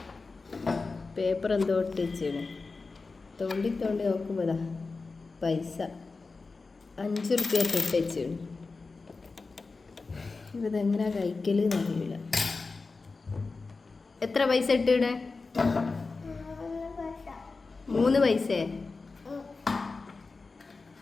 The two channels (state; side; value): quieter; right; 4.0 dB